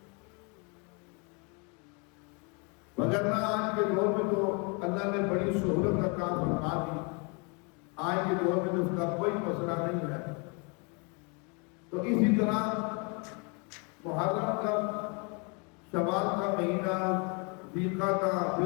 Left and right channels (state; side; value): quieter; right; 33.2 dB